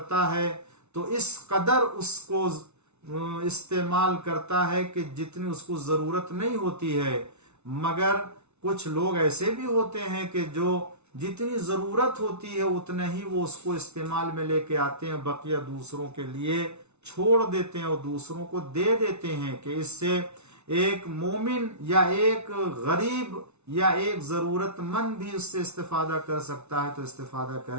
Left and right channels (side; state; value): left; late; 0.81 ms